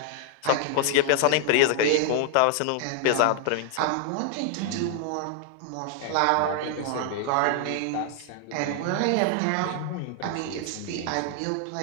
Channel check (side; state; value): both; different; correlation 0.00